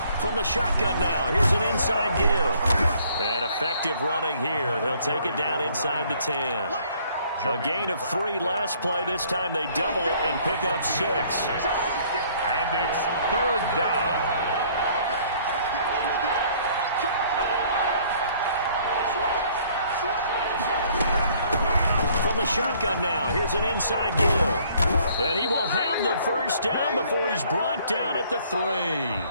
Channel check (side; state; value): both; inverted; correlation -0.60